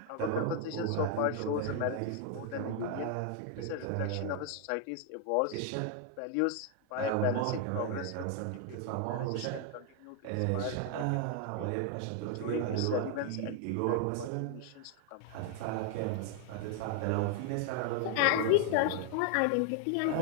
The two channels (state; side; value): different; both; correlation 0.00